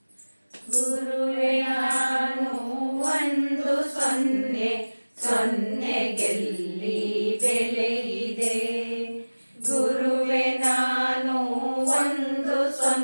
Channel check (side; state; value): both; inverted; correlation -1.00